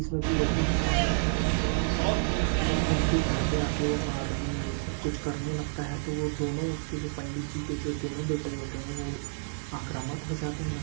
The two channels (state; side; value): silent; left; digital silence